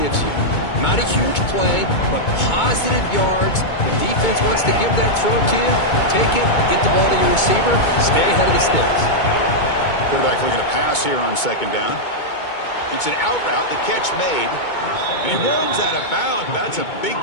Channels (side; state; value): right; late; 2.2 ms